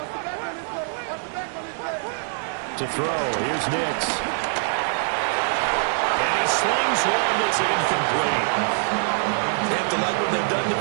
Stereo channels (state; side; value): silent; left; digital silence